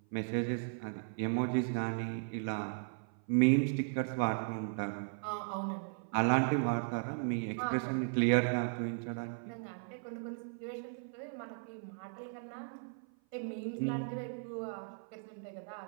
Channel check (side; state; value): left; silent; 53 dB below the other